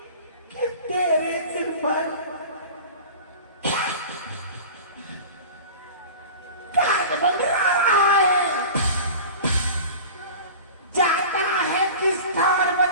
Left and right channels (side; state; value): both; inverted; correlation -0.36